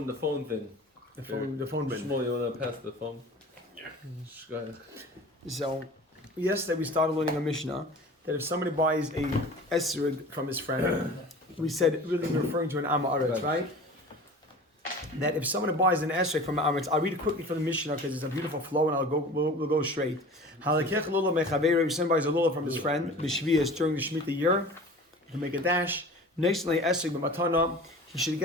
thing. The phone bin. Shmuel, you want to pass the phone? Yeah. Go ahead. So, yesterday we started learning a Mishnah that if somebody buys a esrig from his friend, we said really referring to an Am Haaretz, right? That if somebody buys an esrig from an Am Haaretz, I'll read it quickly from the Mishnah because it's a beautiful flow, and we'll go straight. Halakech lulav mechaveru. If somebody buys a lulav from his friend, b'shvius during the Shemitah year, he can make a dash. Next esrig b'matana, he should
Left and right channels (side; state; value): both; normal; correlation 0.40